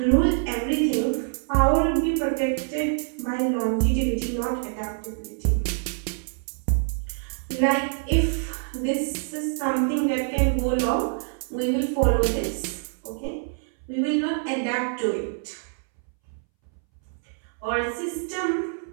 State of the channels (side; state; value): left; silent; 61 dB below the other